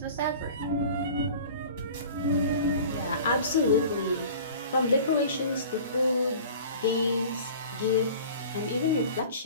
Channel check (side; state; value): both; inverted; correlation -0.42